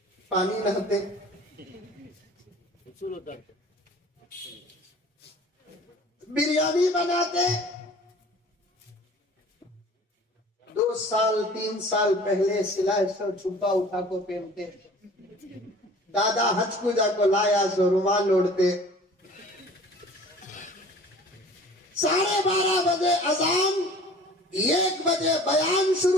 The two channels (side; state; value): both; normal; correlation 0.47